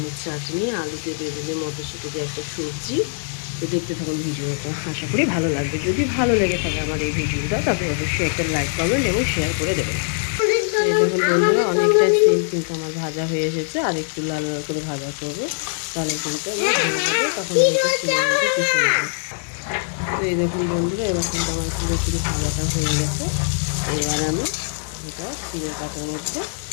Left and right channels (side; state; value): right; silent; 58 dB below the other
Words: চাটনি, আলু দিয়ে বেগুনে, মটরশুঁটি দিয়ে একটা সবজি। তো দেখতে থাকুন ভিডিওটা, আশা করি ভালো লাগবে। যদি ভালো লেগে থাকে আমার এই ভিডিওটা, তবে অবশ্যই একটা লাইক, কমেন্ট এবং শেয়ার করে দেবেন। এই দেখুন বন্ধুরা, অনেকটা সিম কিন্তু আমার ভাজা হয়ে এসেছে। আর একটু লাল লাল করে ভাজা করবো, তাহলে কিন্তু আমার হয়ে যাবে। তখন কিন্তু সিমের মধ্যে পিষে নেবো। তো এই দেখুন বন্ধুরা, এবার কিন্তু আমার পুরোপুরি ভাজাটা হয়ে গেছে। এবার আমি এটা সিমের কাটার মধ্যে